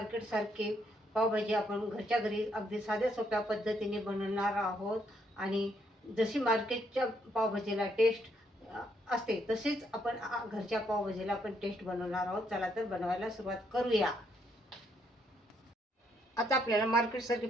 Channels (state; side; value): normal; both; correlation 0.73